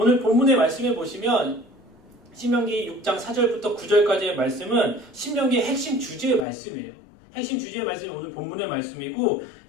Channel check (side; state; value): right; drops out; at 6.5 s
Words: 본문의 말씀에 보시면 신명기 6장 4절부터 9절까지의 말씀은 신명기의 핵심 주제의 말씀이에요. 핵심 주제의 말씀이 오늘 본문의 말씀이고